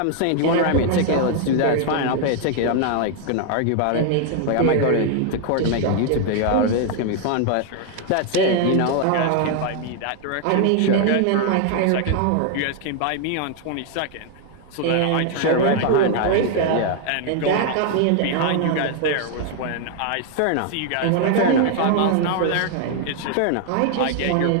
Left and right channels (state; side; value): different; both; correlation 0.00